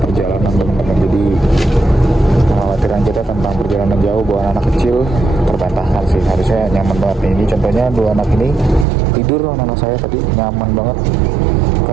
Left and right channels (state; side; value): drops out; left; at 8.8 s